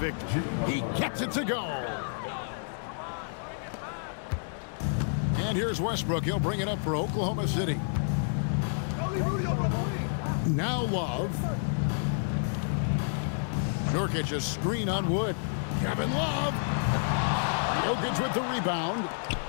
He gets it to go. And here's Westbrook. He'll bring it up for Oklahoma City. Now Love. Nurkic a screen on Wood. Kevin Love. Jokic with the rebound.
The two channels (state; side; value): silent; right; digital silence